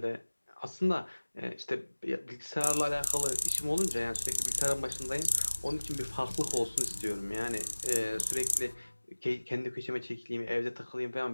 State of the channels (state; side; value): inverted; both; correlation -1.00